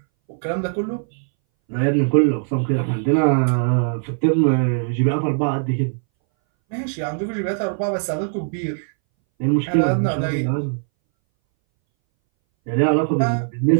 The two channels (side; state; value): left; silent; 62 dB below the other